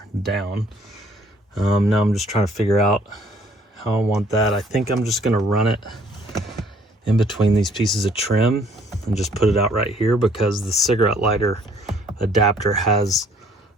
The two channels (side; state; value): both; normal; correlation 0.61